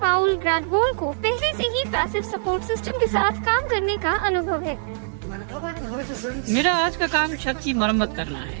पाउल ग्रैडवॉल को पहले से ही पैसिव सपोर्ट सिस्टम के साथ काम करने का अनुभव है। मेरा आज का काम छत की मरम्मत करना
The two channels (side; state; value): left; silent; digital silence